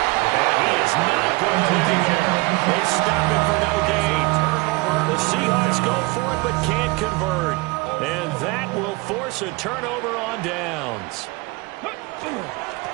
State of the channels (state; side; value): quieter; left; 24.5 dB